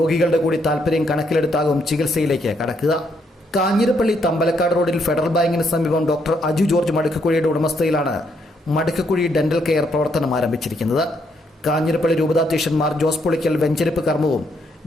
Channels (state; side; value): normal; both; correlation 0.74